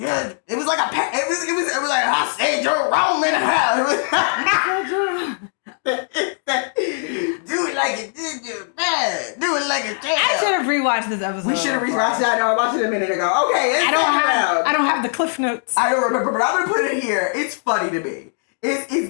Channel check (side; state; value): right; silent; 61 dB below the other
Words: it was like it was like, I said Jerome in the house. Do it like it did you, man. Do it like it did. I should have rewatched this episode. We should have rewatched that. No, I watched it a minute ago. Okay, I don't have the cliff notes. I don't remember, but I'm gonna put it here. It's funny to me.